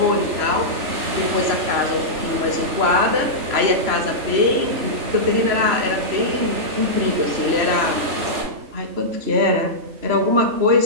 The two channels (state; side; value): late; left; 3.0 ms